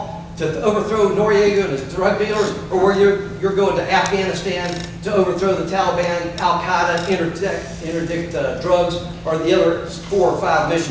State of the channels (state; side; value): identical; both; correlation 1.00